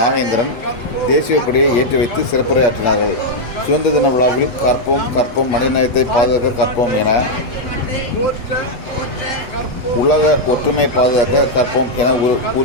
தேசிய கொடியை ஏற்றி வைத்து சிறப்புரையாற்றினார்கள். சுதந்திர தின விழாவில் கற்போம் கற்போம் மனிதநேயத்தை பாதுகாக்க கற்போம் என, உலக ஒற்றுமை பாதுகாக்க கற்போம் என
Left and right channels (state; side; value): late; right; 8.0 ms